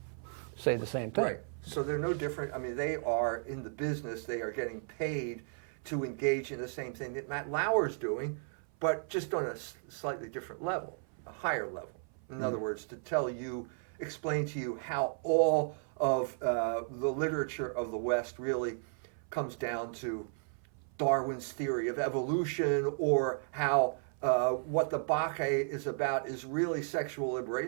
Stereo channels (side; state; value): left; silent; 55 dB below the other